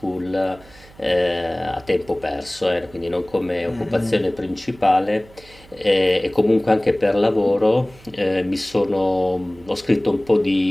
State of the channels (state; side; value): noise; right; hum, 24 dB below the sound